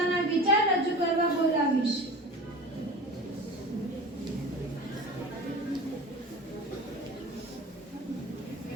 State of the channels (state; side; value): normal; both; correlation 0.35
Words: વિચાર રજૂ કરવા બોલાવીશ.